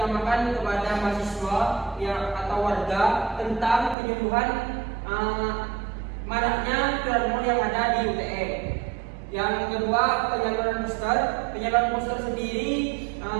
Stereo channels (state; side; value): drops out; left; at 4.0 s